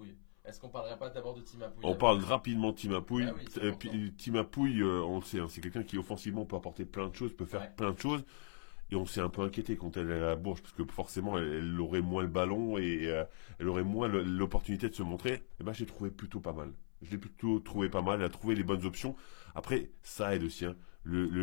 Est-ce qu'on parlerait pas d'abord de Timapouille? On parle rapidement de Timapouille. Bah oui, c'est important. Timapouille, on le sait, hein, c'est quelqu'un qui offensivement peut apporter plein de choses, peut faire plein de choses. Et on s'est un peu inquiété quand elle est à la Bourges parce que forcément elle aurait moins le ballon et elle aurait moins l'opportunité de se montrer. Et ben j'ai trouvé plutôt pas mal. Je l'ai plutôt trouvé pas mal. Elle a trouvé les bonnes options. Après ça aide aussi. Hein.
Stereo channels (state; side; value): silent; right; 52 dB below the other